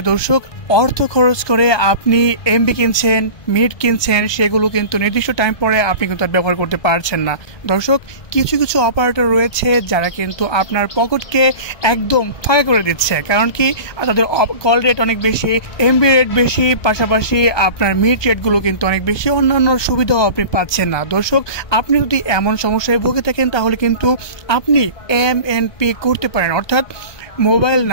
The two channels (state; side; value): late; right; 1.2 ms